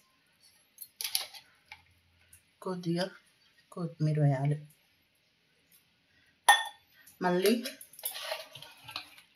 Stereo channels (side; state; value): both; identical; correlation 1.00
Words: కొద్దిగా కొత్తిమీర వేయాలి. మళ్ళీ